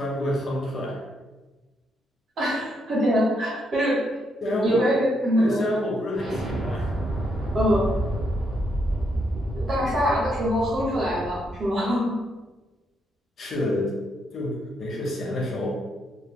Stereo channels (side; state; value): both; normal; correlation 0.77